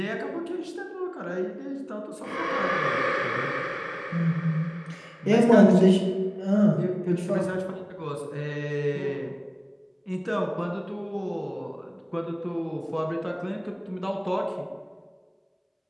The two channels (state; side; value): identical; both; correlation 1.00